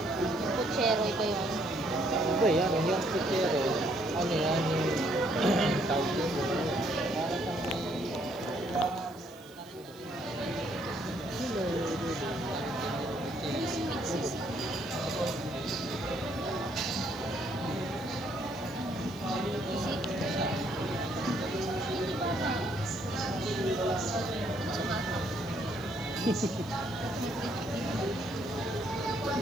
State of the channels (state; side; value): noise; right; hiss, 24 dB below the sound